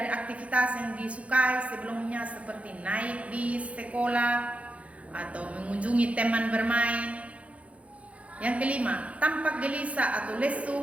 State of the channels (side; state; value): left; late; 0.064 ms